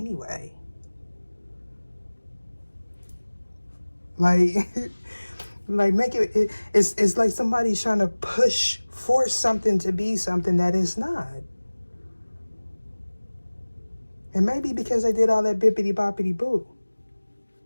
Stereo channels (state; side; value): inverted; both; correlation -1.00